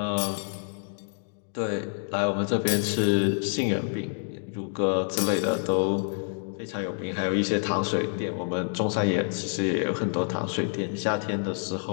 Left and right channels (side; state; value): right; silent; 57 dB below the other